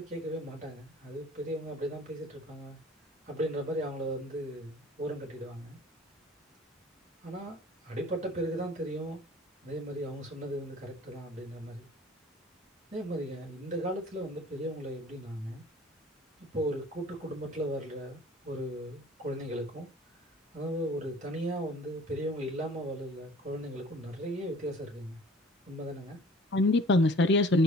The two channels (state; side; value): normal; both; correlation 0.49